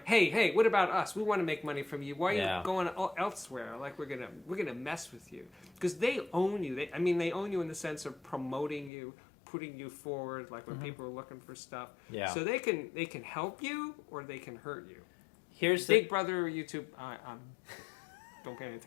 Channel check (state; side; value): drops out; right; at 8.9 s